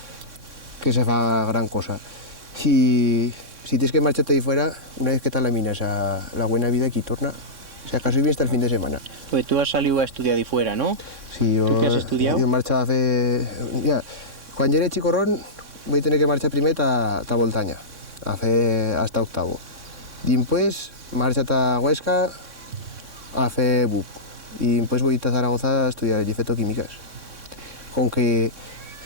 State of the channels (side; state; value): left; late; 3.6 ms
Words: se fa gran cosa. Si tienes que marcharte ahí fuera, una vez que te laminas a la buena vida aquí torna, si acaso viene hasta el fin de semana. Pues tú has salido a estudiar de fuera, ¿no? Sí, ¿Tú qué has estudiado? Yo marchaba cuando era chicorrón voy a tener que marchar primer a Voltaña, hasta octavo. Después marcha a Huesca a hacer BUP y después voy a Zaragoza a estudiar fetoquímicas. Con que